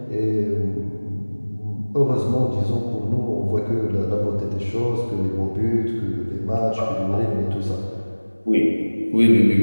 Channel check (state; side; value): inverted; both; correlation -1.00